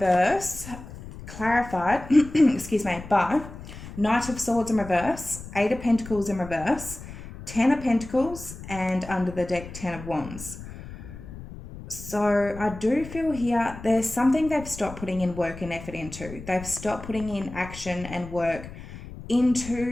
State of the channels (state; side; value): noise; left; rumble, 13 dB below the sound